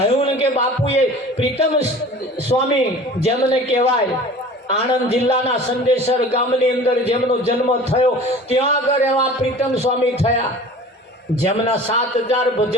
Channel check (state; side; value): normal; both; correlation 0.42